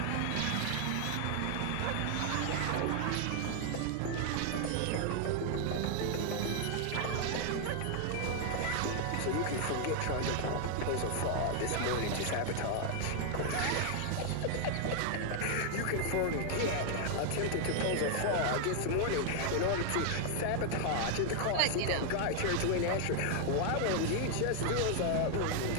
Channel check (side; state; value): both; different; correlation 0.00